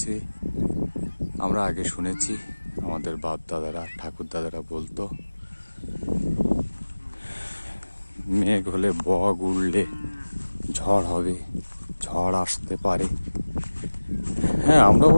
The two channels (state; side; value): inverted; both; correlation -1.00